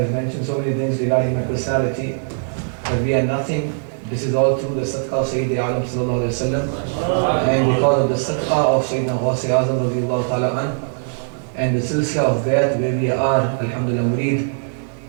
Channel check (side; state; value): left; silent; 63 dB below the other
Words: mentioned so many things regarding my personality but we are nothing. This is all through the sadaqah of Sayyid Alam sallallahu alayhi wa sallam and because of the sadaqah of Sayyidina Ghawth Azam radiyallahu ta'ala an and the silsila of Bayat where we are alhamdulillah murid